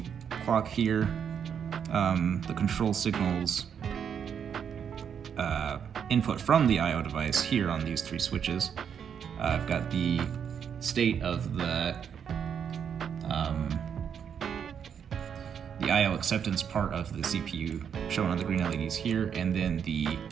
clock here, the control signals input from the I/O device here on these three switches. I've got the state of the I/O acceptance part of the CPU shown on the green LEDs here, and then the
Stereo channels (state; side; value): quieter; left; 7.8 dB